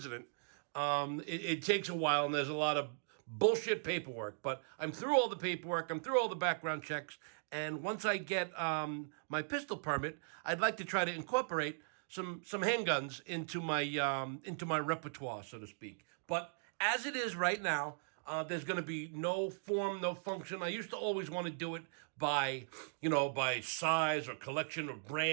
It takes a while, and there's a lot of bullshit paperwork. But I'm through all the paperwork. I'm through all the background checks, and once I get my pistol permit, I'd like to try to incorporate some handguns into my repertoire, so to speak. But as it is right now, there's going to be no form, no function. I used to always want to do it by size or collection or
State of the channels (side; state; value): left; silent; digital silence